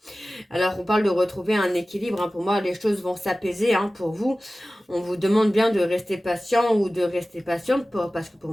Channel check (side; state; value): both; normal; correlation 0.96